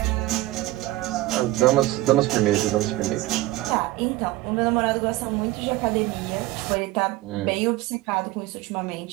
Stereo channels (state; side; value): quieter; left; 17.5 dB